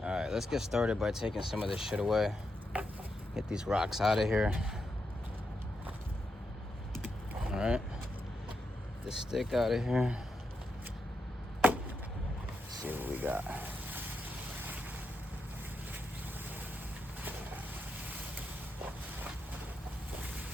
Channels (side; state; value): both; normal; correlation 0.84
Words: All right, let's get started by taking some of this shit away. Get these rocks out of here. All right, the stick out of here. Let's see what we got.